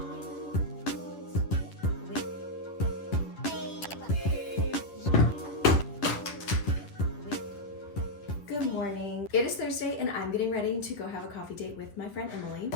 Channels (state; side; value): late; right; 10 ms